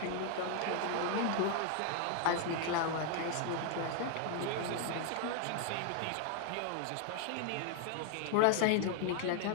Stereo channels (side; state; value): both; different; correlation 0.00